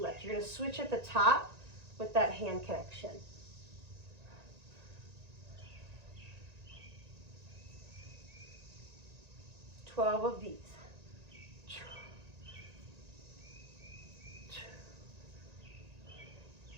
You're gonna switch at the top with that hand connection. Twelve of these.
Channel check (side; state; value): left; late; 1.9 ms